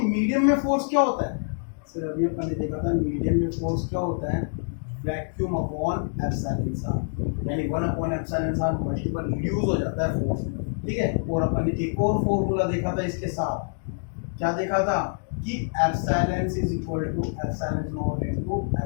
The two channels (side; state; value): right; silent; digital silence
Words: में फोर्स क्या होता है सर, अभी अपन ने देखा था मीडियम में फोर्स क्या होता है, वैक्यूम अपॉन एप्सिलॉन आर, यानी 1 upon epsilon R multiple reduce हो जाता है फोर्स, ठीक है। और अपन ने एक और फॉर्मूला देखा था इसके साथ, क्या देखा था कि epsilon is equal to epsilon naught into